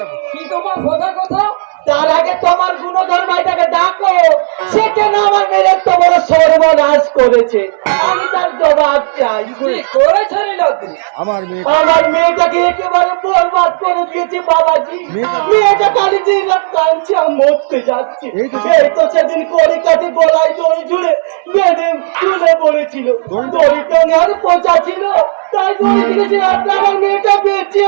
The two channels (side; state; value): left; silent; digital silence